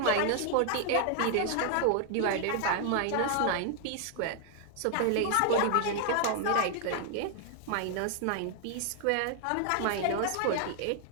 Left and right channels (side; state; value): both; different; correlation 0.00